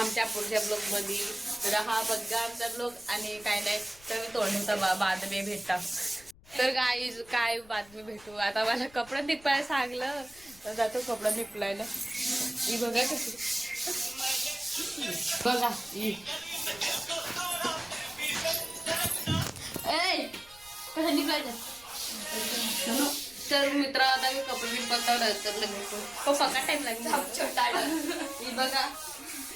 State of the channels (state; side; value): noise; left; rumble, 24 dB below the sound